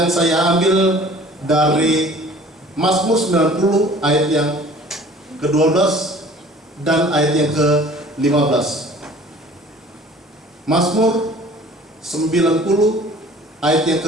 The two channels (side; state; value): both; normal; correlation 0.49